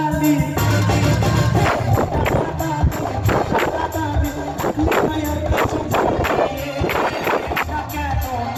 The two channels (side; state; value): both; identical; correlation 1.00